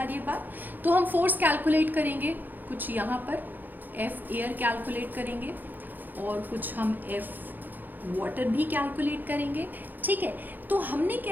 रही है बात। तो हम फोर्स कैलकुलेट करेंगे, कुछ यहाँ पर F एयर कैलकुलेट करेंगे, और कुछ हम F वाटर भी कैलकुलेट करेंगे। ठीक है, तो हमने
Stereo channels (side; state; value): left; late; 0.087 ms